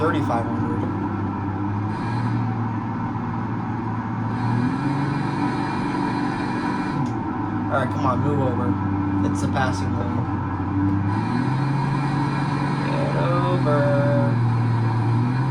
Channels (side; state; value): both; identical; correlation 1.00